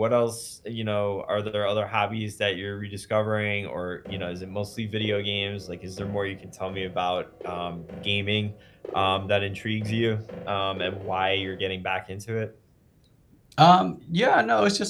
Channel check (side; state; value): both; identical; correlation 1.00